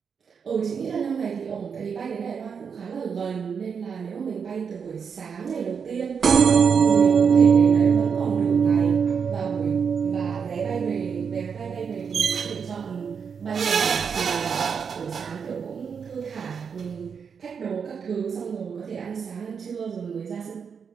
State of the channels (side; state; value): left; quieter; 6.4 dB